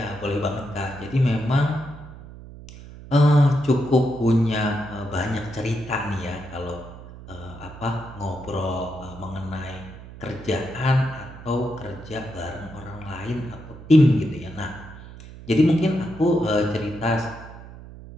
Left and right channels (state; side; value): noise; right; hum, 16 dB below the sound